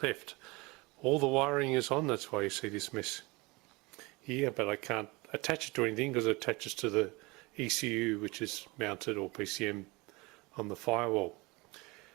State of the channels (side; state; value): left; quieter; 24.6 dB